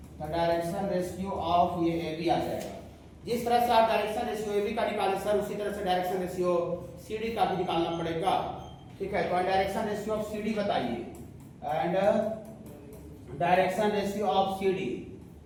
तो डायरेक्शन रेशियो ऑफ ये ए बी आ जाएगा। जिस तरह से आप डायरेक्शन रेशियो ए बी का निकाले सर, उसी तरह से डायरेक्शन रेशियो सी डी का भी निकालना पड़ेगा। ठीक है, तो direction ratio of C D बताइए, and direction ratio of C D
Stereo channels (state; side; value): identical; both; correlation 1.00